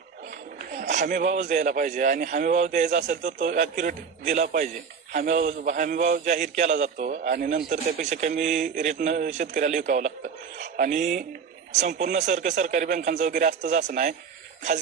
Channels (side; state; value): left; quieter; 6.3 dB